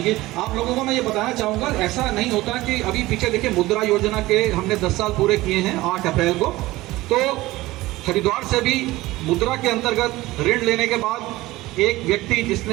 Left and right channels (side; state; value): left; quieter; 18.5 dB